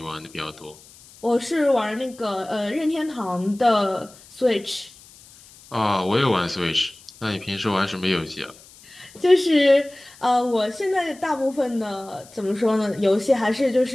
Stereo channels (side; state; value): left; noise; hiss, 23 dB below the sound